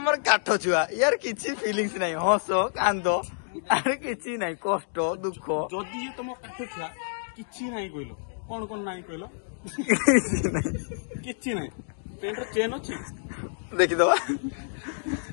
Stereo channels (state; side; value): silent; right; digital silence